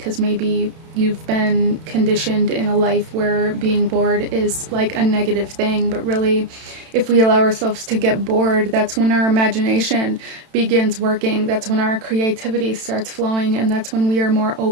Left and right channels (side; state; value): left; late; 31 ms